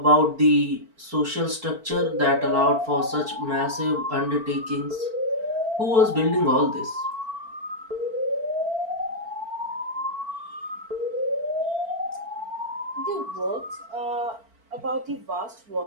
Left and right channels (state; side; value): late; left; 4.5 ms